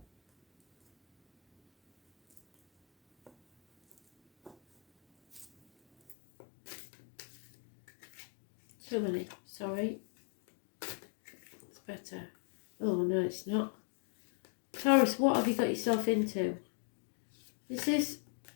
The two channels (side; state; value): right; drops out; at 6.2 s